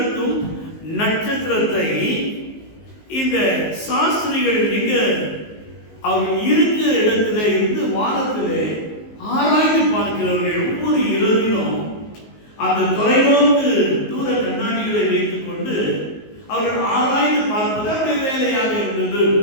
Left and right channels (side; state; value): right; late; 19 ms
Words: நட்சத்திரத்தை இந்த சாஸ்திரிகள் எங்க அவர் இருக்கிற இடத்துல இருந்து வானத்திலே ஆராய்ந்து பார்க்கிறவர்கள். ஒவ்வொரு இரவிலும் அந்த தொலைநோக்கு தூர கண்ணாடிகளை வைத்துக் கொண்டு அவர்கள் ஆராய்ந்து பார்ப்பது அவருடைய வேலையாக இருந்தது.